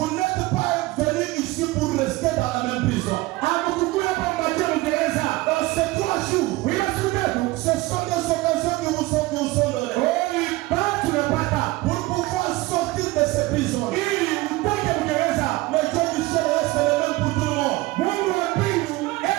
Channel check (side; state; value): left; quieter; 20.2 dB